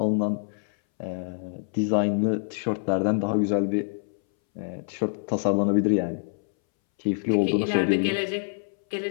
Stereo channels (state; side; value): silent; right; 61 dB below the other